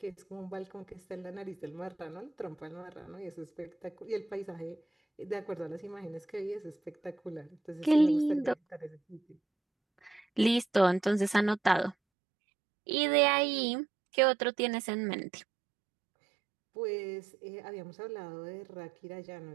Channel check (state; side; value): drops out; left; at 12.0 s